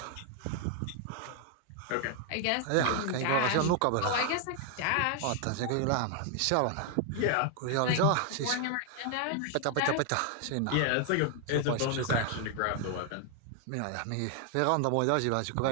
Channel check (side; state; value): both; different; correlation 0.00